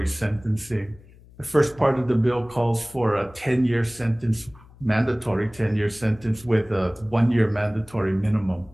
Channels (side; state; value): left; noise; hum, 24 dB below the sound